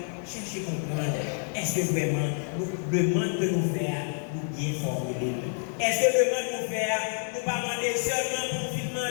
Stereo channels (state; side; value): silent; right; 58 dB below the other